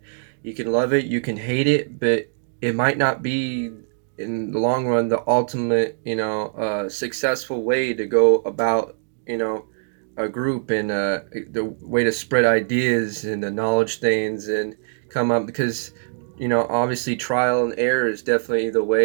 You can love it, you can hate it, but it might not be in the long run the ultimate, successful way to go about, a group, and the way to spread ideas and knowledge things and come up, because, obviously trial and error is definitely the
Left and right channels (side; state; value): left; silent; digital silence